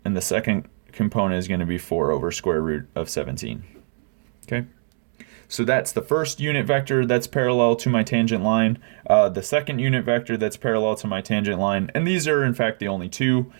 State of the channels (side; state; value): left; silent; 57 dB below the other